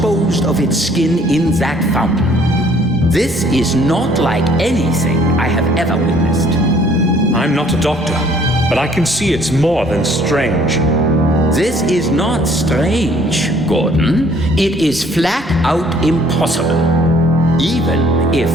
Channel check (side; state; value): both; normal; correlation 0.59